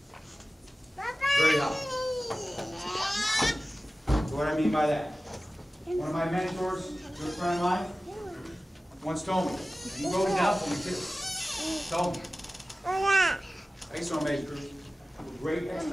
Very high. So what I mean by that? One of my mentors, a good friend of mine, once told me, and he wrote it down for me too, told me, I used to major group, with great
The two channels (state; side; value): normal; both; correlation 0.96